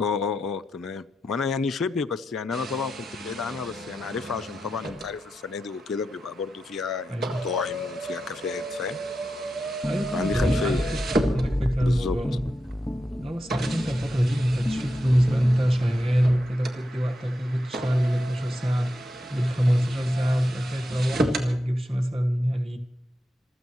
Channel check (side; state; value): both; normal; correlation 0.87